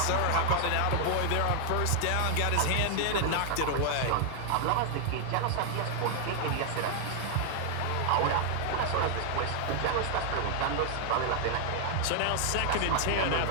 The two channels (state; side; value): different; both; correlation 0.00